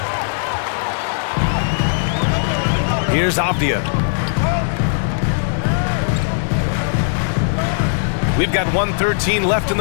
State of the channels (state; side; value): silent; right; 67 dB below the other